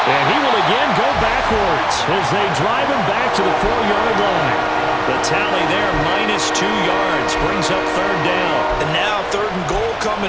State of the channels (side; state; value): both; identical; correlation 1.00